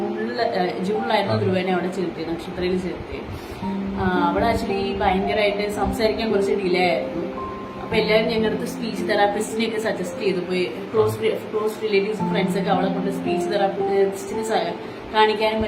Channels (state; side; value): identical; both; correlation 1.00